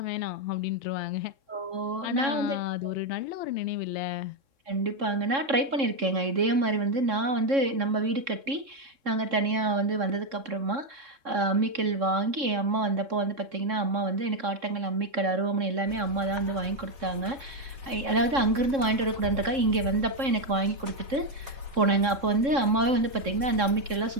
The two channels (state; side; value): late; left; 3.7 ms